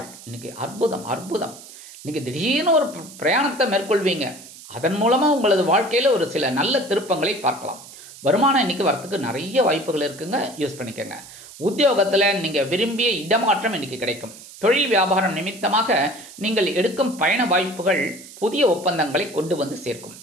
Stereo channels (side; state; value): right; noise; hiss, 17 dB below the sound